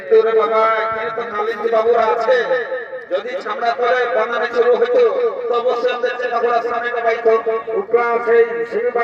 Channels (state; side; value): identical; both; correlation 1.00